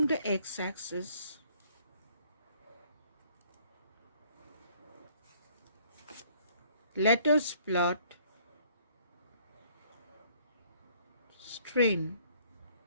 the x-axis, let us plot strain.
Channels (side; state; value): both; inverted; correlation -0.61